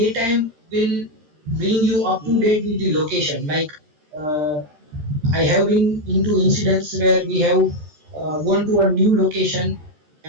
will bring you up to date with the location. Like uh, I have been into incidents where we have gone to a new location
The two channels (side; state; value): left; late; 13 ms